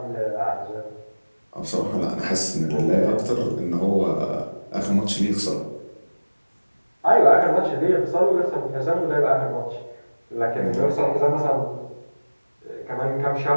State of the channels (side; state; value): both; inverted; correlation -1.00